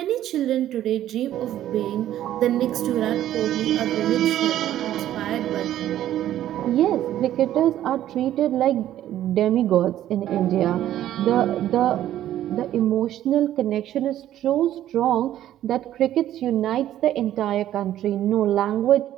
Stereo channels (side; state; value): left; quieter; 12.4 dB